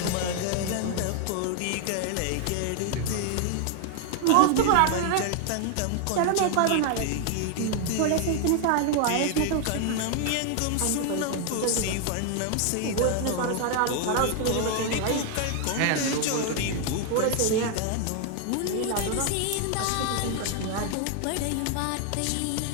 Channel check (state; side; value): different; both; correlation 0.00